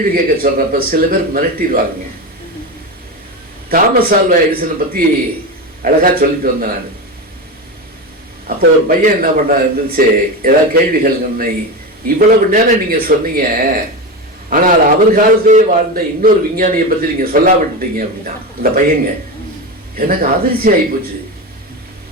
கேட்க சொல்றப்ப சில பேர் மிரட்டிடுவாங்க. தாமஸ் ஆல்வா எடிசனை பத்தி அழகா சொல்லிட்டு வந்தேன் நான். அப்போ ஒரு பையன் என்ன பண்ண இருந்துச்சு, ஏதாவது கேள்விகள், இவ்வளவு நேரம் நீங்க சொன்னீங்க, ஆனால் அவர் காலத்திலே வாழ்ந்த இன்னொரு விஞ்ஞானியை பத்தி நீங்க சொல்லாம விட்டுட்டீங்க அப்படின்னா. இந்த பையங்க எனக்கு அதிர்ச்சி ஆகி போச்சு.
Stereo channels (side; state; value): both; normal; correlation 0.20